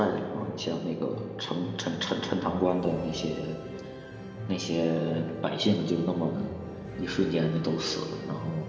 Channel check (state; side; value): identical; both; correlation 1.00